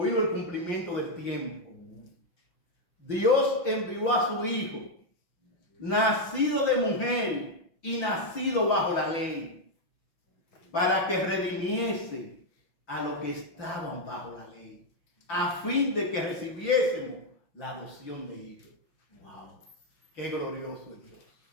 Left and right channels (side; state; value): right; late; 5.8 ms